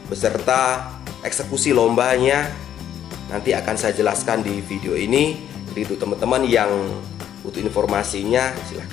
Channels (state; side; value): quieter; right; 10.3 dB